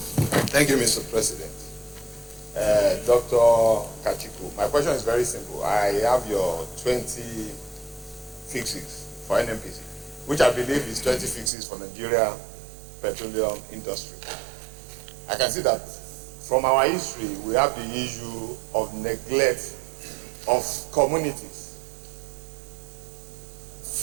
Thank you, Mr. President. Dr. Kachikwu, my question is very simple. I have your 20 fixes for NNPC, which I believe is 20 fixes for Nigeria petroleum industry. I can see that from our history, we have the issue of neglect of communities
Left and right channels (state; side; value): drops out; left; at 11.5 s